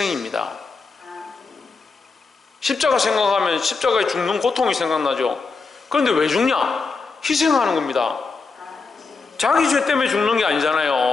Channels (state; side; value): quieter; right; 4.4 dB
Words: 십자가 생각하면 십자가에 죽는 고통이 생각나죠. 그런데 왜 죽냐? 희생하는 겁니다. 자기 죄 때문에 죽는 게